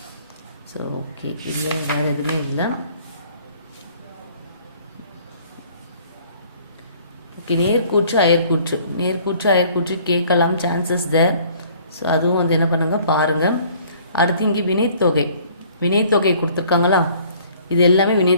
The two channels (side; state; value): both; inverted; correlation -0.56